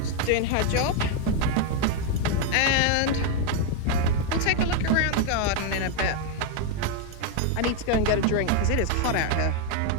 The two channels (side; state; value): both; different; correlation 0.01